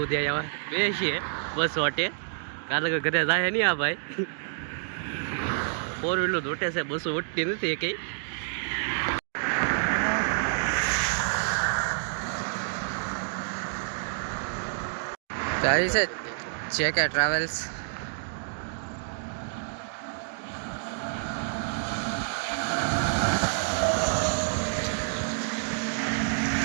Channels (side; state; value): left; silent; digital silence